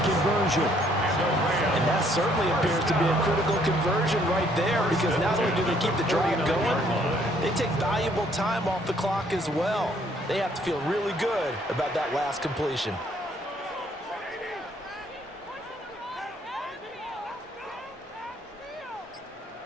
conversion. And That certainly appears to be a critical conversion right there, because not only do they keep the drive going, they take valuable time off the clock as well. They have to feel really good about that last completion.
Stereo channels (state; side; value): normal; both; correlation 0.65